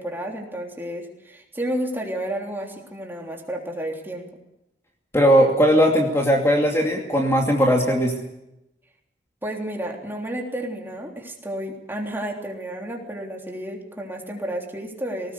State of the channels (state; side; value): normal; both; correlation 0.66